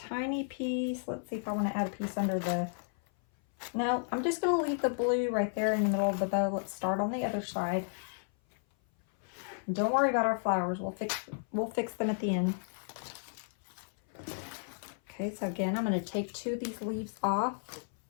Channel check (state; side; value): silent; right; 56 dB below the other